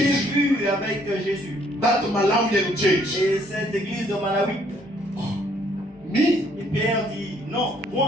church, vu avec Jésus. that Malawian church. Et cette église de Malawi. Me? Et Pierre dit, non,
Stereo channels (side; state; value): both; normal; correlation 0.65